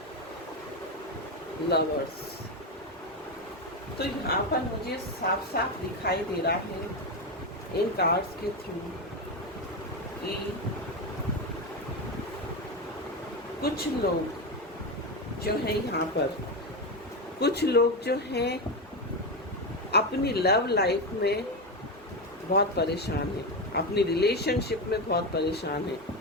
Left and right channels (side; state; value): both; normal; correlation 0.13